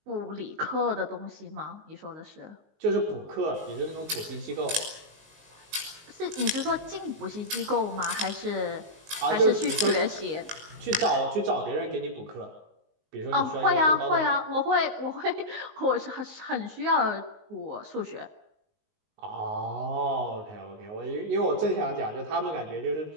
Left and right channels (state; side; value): late; left; 19 ms